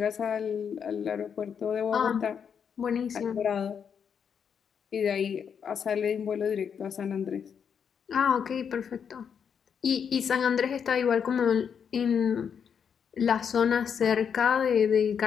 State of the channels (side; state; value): right; quieter; 7.3 dB